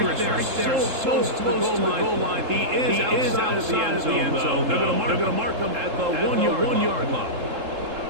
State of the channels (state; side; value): late; left; 3.7 ms